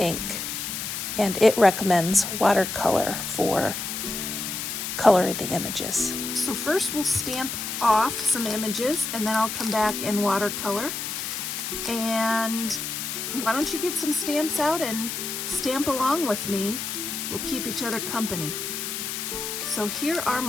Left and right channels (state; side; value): noise; left; hiss, 4 dB below the sound